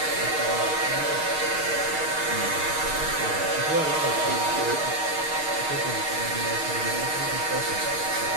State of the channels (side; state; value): left; late; 6.5 ms